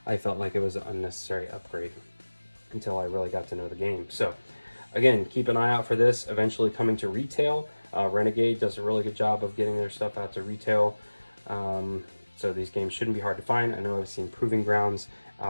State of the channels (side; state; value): both; inverted; correlation -1.00